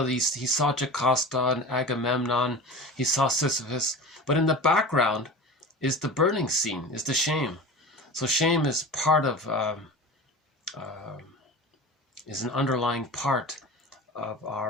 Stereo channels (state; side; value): normal; both; correlation 0.34